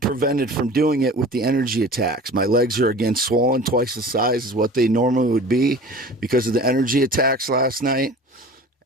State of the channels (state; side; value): normal; both; correlation 0.41